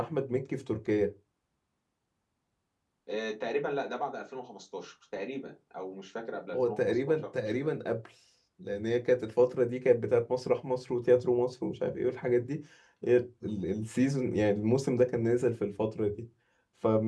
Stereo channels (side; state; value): both; identical; correlation 1.00